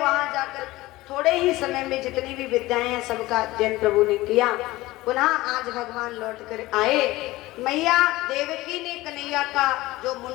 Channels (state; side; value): quieter; right; 18.6 dB